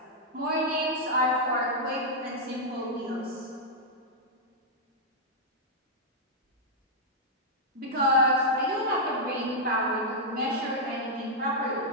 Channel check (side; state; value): both; normal; correlation -0.04